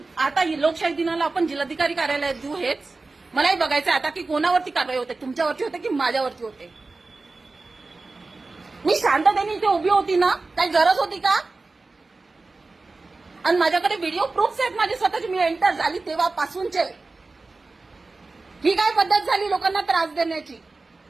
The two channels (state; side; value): quieter; left; 3.6 dB